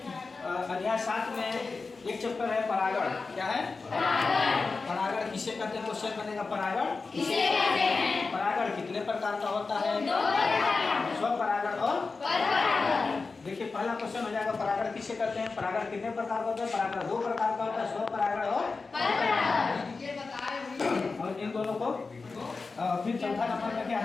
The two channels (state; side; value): quieter; right; 4.2 dB